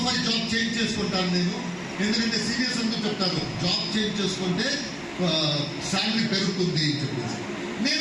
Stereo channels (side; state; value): both; identical; correlation 1.00